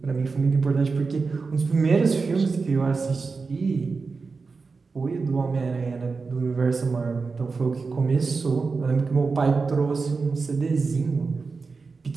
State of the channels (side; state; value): left; quieter; 4.5 dB